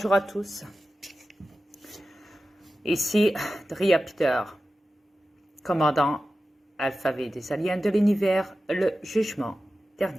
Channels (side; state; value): both; normal; correlation 0.94